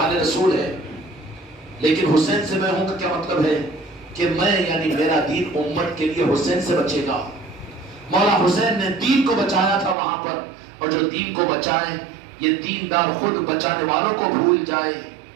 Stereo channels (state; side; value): drops out; left; at 10.0 s